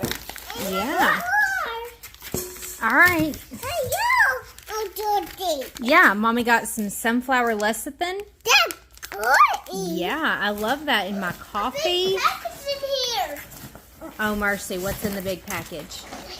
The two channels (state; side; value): identical; both; correlation 1.00